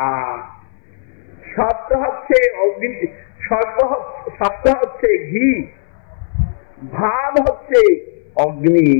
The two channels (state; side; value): silent; right; 63 dB below the other